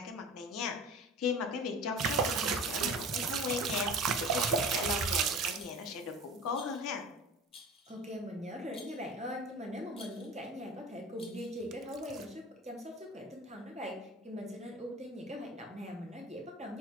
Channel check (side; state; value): both; normal; correlation 0.38